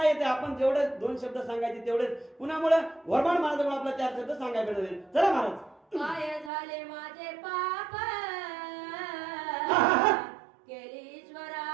येते? आपण जेवढे 2 शब्द सांगायचे तेवढेच. कुणामुळे? घोरबाण महाराजांमुळे आपल्याला 4 शब्द सांगायला भेटले. चला महाराज. काय झाले माझे पाप केली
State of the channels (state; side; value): drops out; left; at 6.5 s